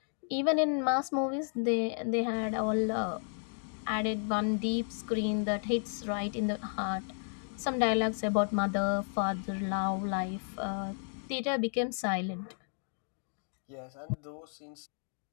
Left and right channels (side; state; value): right; silent; 56 dB below the other